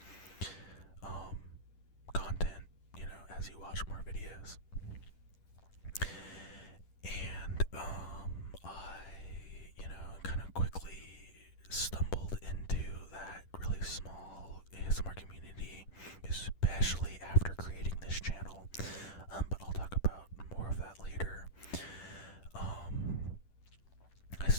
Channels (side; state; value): right; late; 10 ms